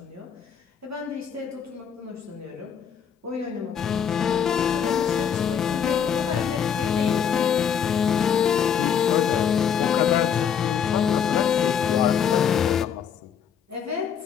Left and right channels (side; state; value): right; quieter; 7.8 dB